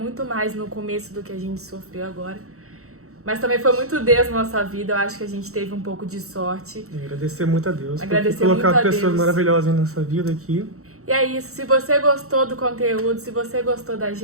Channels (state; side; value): late; left; 0.64 ms